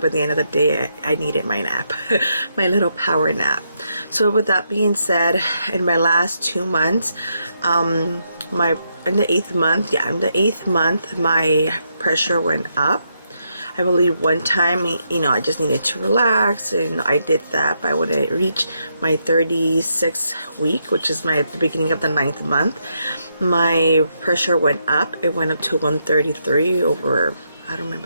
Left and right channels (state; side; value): inverted; both; correlation -0.79